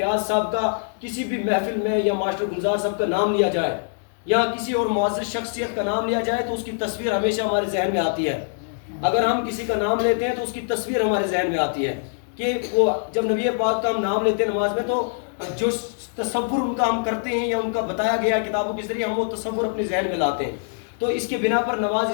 صاحب کا کسی بھی محفل میں یا ماسٹر گلزار صاحب کا نام لیا جائے یا کسی اور معزز شخصیت کا نام لیا جائے تو اس کی تصویر ہمیشہ ہمارے ذہن میں آتی ہے۔ اگر ہم کسی کا نام لیتے ہیں تو اس کی تصویر ہمارے ذہن میں آتی ہے کہ وہ جب نبی پاک کا ہم نام لیتے ہیں نماز میں تو جو تصور ان کا ہم کرتے ہیں یا ان کا بتایا گیا کتابوں کے ذریعے ہم وہ تصور اپنے ذہن میں لاتے ہیں، تو اس کے بنا پر نماز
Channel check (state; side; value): silent; right; digital silence